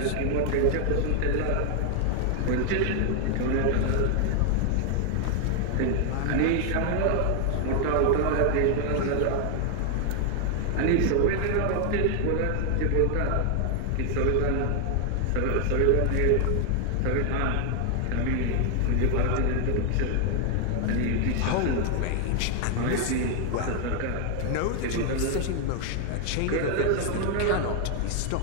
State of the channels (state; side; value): different; both; correlation 0.00